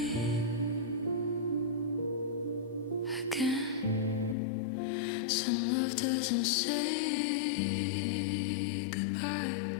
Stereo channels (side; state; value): right; drops out; at 4.4 s